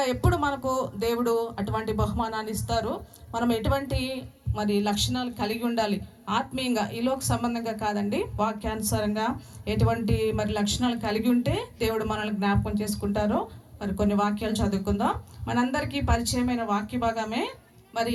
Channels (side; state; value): both; identical; correlation 1.00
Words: ఎప్పుడు మనకు దేవుడు అటువంటి బహుమానాన్ని ఇస్తారు, మనం ఎటువంటి మరి లక్షణాలు కలిగి ఉండాలి ఆత్మీయంగా, ఈలోక సంబంధంగా కాదండి, వాక్యానుసారంగా ఎటువంటి మరి లక్షణాలు కలిగి ఉంటే దేవుడు మనల్ని జ్ఞాపకం చేసుకుంటారో మరి కొన్ని వాక్యాలు చదువుకుందాం. మనందరికీ పరిచయమైన వాక్య భాగమే. మరి